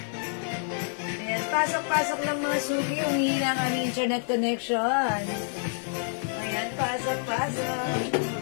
Ayan, pasok-pasok lang mga suki. Umihina ang aming internet connection. Ayan, pasok-pasok.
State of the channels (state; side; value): silent; right; digital silence